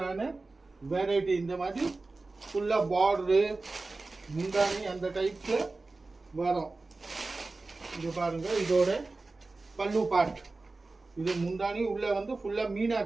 வெரைட்டி. இந்த மாதிரி ஃபுல்லாக பார்டரு முந்தானி அந்த டைப்பில் வரும். இது பாருங்கள், இதோட பல்லு பார்ட். இது முந்தானி உள்ளே வந்து ஃபுல்லாக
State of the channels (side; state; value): left; quieter; 3.5 dB